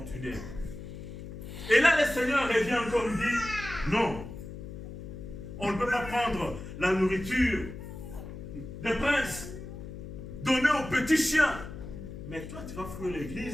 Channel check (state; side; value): noise; left; hum, 10 dB below the sound